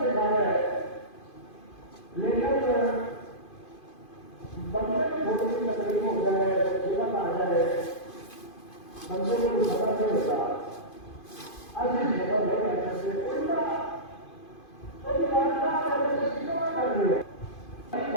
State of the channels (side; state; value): right; late; 2.5 ms